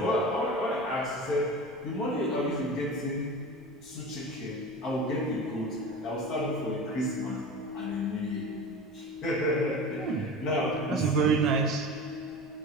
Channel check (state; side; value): noise; right; rumble, 27 dB below the sound